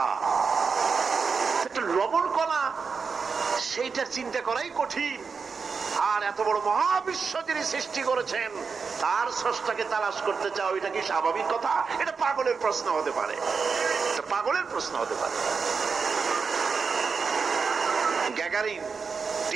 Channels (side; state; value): left; quieter; 5.3 dB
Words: একটা লবণ কণা, সেইটা চিন্তা করাই কঠিন। আর এত বড় মহাবিশ্ব যিনি সৃষ্টি করেছেন তার স্রষ্টাকে তালাশ করতে চাও, এটা কি স্বাভাবিক কথা? এটা পাগলের প্রশ্ন হতে পারে, এটা পাগলের প্রশ্ন হতে পারে। গ্যাগারিন,